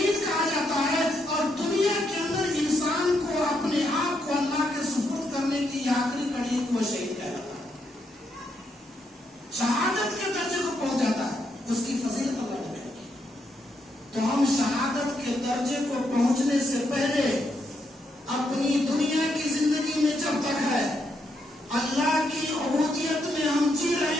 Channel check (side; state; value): both; normal; correlation 0.78